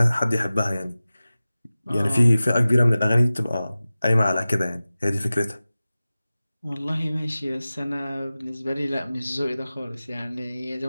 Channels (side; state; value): both; inverted; correlation -0.97